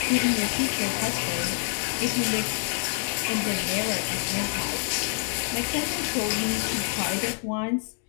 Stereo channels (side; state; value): right; silent; digital silence